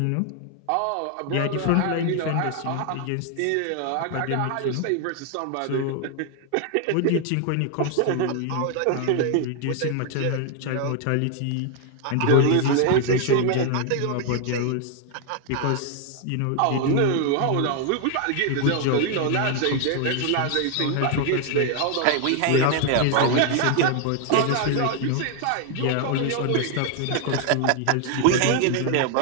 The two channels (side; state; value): both; different; correlation 0.00